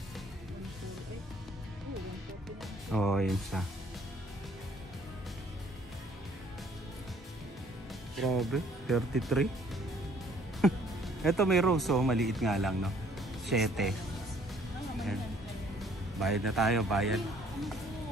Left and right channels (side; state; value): both; normal; correlation 0.60